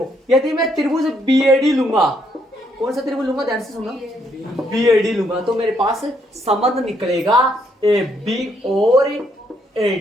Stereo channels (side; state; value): both; normal; correlation 0.73